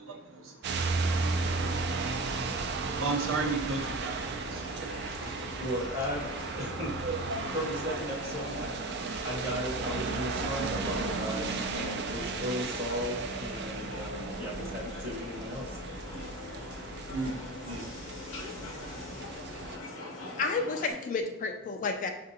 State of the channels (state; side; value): normal; both; correlation 0.28